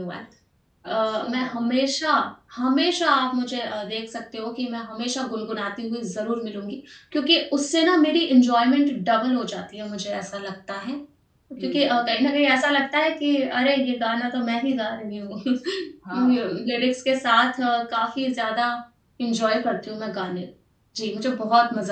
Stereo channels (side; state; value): both; identical; correlation 1.00